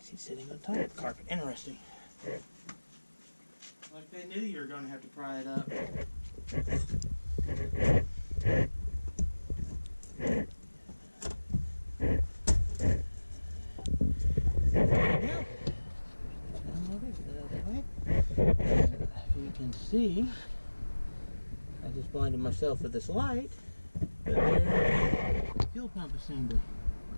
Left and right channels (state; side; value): inverted; both; correlation -1.00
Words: sitting on top of the carpet. Interesting. Like they knew you were going to have to pry it up. If you can see, I just blinded myself with this light, but there's the fuel pump assembly.